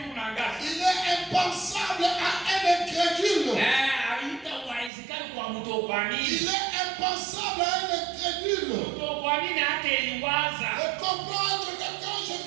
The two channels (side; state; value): left; drops out; at 4.9 s